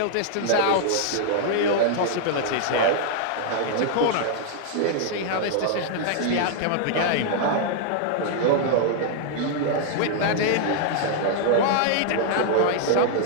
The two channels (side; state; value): both; different; correlation 0.00